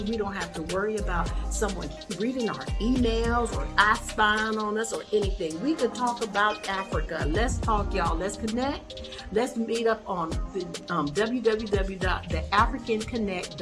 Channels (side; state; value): both; identical; correlation 1.00